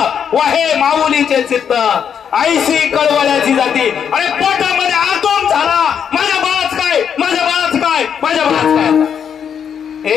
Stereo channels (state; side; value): quieter; right; 7.8 dB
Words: वाहे माऊलीचे चित्त, आईशी कळवळ्याची जाती. अरे पोटामध्ये आतोम झाला, माझ्या बाळाच काय, माझ्या बाळाच काय, माझ्या बाळाच काय.